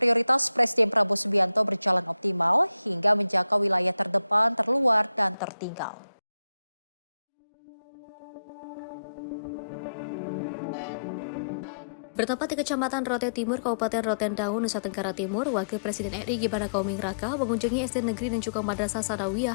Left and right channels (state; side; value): drops out; right; at 5.4 s